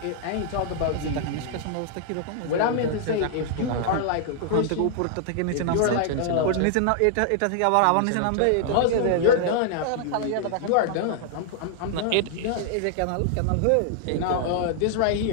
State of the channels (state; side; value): different; both; correlation -0.01